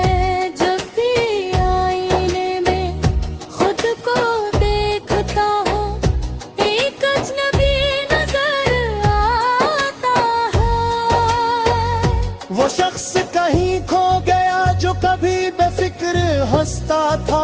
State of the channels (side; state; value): both; identical; correlation 1.00